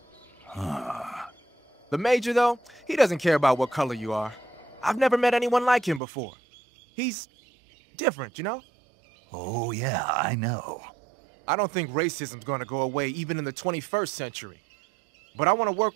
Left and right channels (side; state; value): left; drops out; at 6.0 s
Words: The Major, though, he doesn't care about what color you are. I've never met anyone like him before. He's different, you know? Oh, yeah, I know. I don't think racism's gonna go away even in the 21st century. But I want to